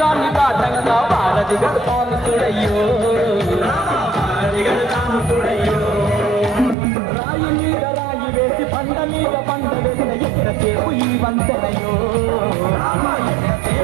దాటంగా వారధిగడతాను చూడయ్యో రాయి మీద రాయి వేసి పండ మీద పండ వేసిన ఎంతసేపు ఈ వంతెనయో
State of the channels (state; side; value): drops out; left; at 6.8 s